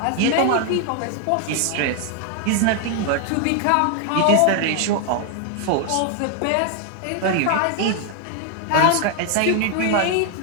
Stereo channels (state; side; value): different; both; correlation 0.00